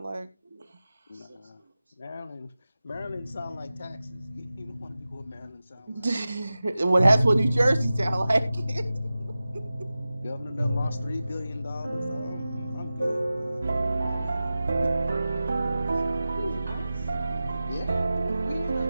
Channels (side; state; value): both; inverted; correlation -0.95